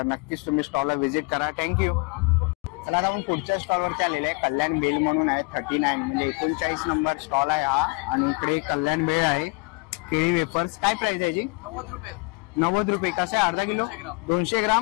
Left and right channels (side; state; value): right; quieter; 29.4 dB